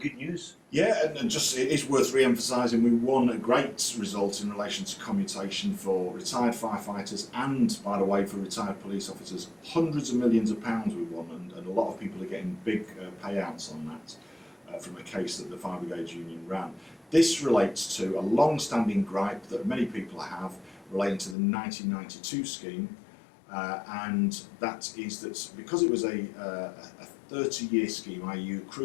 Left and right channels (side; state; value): right; drops out; at 21.4 s